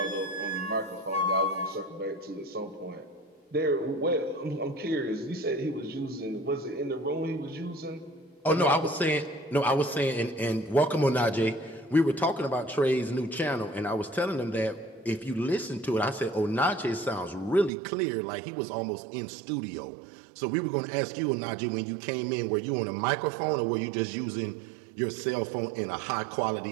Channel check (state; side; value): drops out; left; at 17.7 s